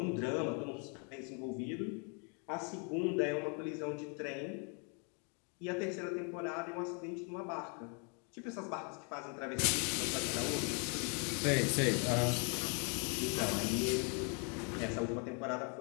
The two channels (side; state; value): right; quieter; 37.4 dB